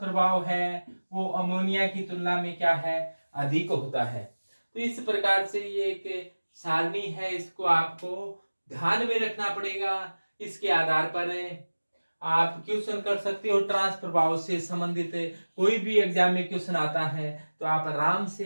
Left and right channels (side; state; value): both; inverted; correlation -1.00